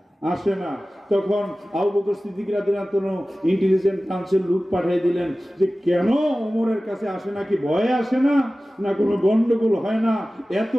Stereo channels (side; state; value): both; normal; correlation 0.96